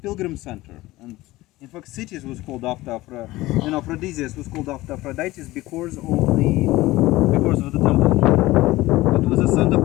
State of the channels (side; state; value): right; quieter; 18.3 dB